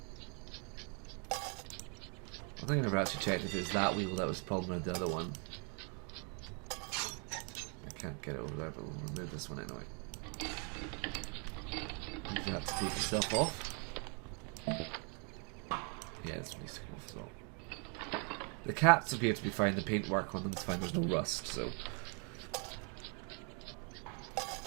I think I never actually checked if it was that wheel that was the problem or the other one. I can't get it over there, but we'll remove this one anyway. You have to take yourself off. Yeah, this needs to come off as well. The cats appear to be fine, the paintwork on them is fine, there's no rust, so...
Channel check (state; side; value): quieter; left; 34.6 dB